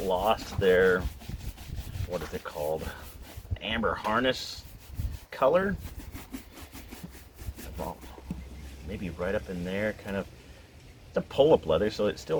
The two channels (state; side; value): identical; both; correlation 1.00